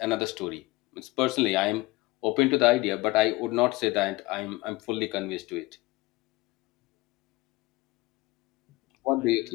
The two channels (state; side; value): quieter; right; 20.9 dB